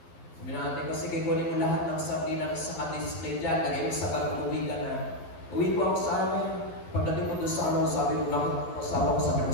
Sabi natin ko, sige, kunin mo lahat ng sardinas sa display dyan, lagay mo sa bag, uwi ka na. Uwi ko ako sa amin. Pagdating ko doon sa ano, sabi ko, asawa ko, sabi ko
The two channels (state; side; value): late; right; 12 ms